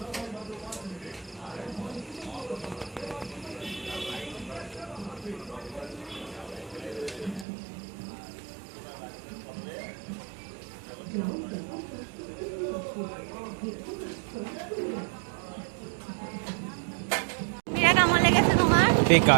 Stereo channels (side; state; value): left; drops out; at 7.5 s